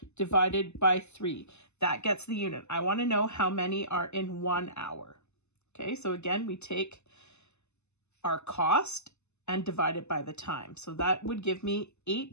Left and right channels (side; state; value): right; late; 0.82 ms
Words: divided by 3. That gets the unit. I want to know how many are in 1 hour. Okay, so again, we take our cost and divide it by the time. So that would give me